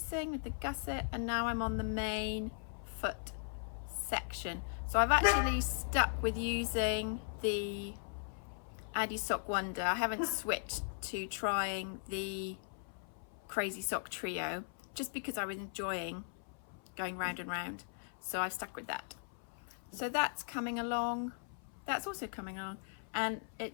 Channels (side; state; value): right; silent; 52 dB below the other